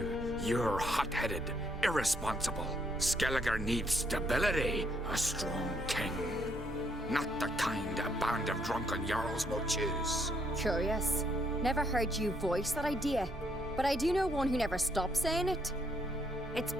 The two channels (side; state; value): both; normal; correlation 0.71